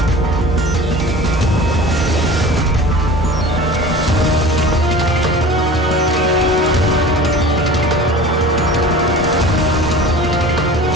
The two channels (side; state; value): both; normal; correlation 0.39